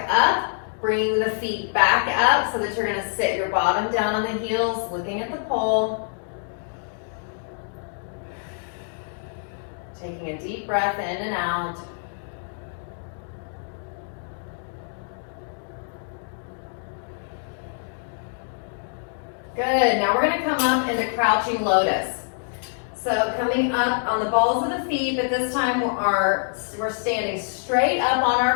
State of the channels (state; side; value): silent; right; digital silence